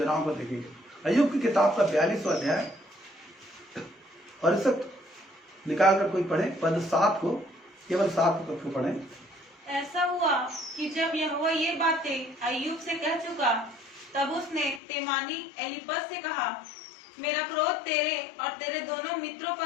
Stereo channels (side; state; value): right; drops out; at 14.8 s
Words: को देखेंगे। अय्यूब की किताब का 42वां अध्याय और इस निकाल कर कोई पढ़े पद 7 को, केवल 7 पद को पढ़े। ऐसा हुआ कि जब यहोवा ये बातें अय्यूब से कह चुका, तब उसने तेमानी एलीपज से कहा, मेरा क्रोध तेरे और तेरे दोनों मित्रों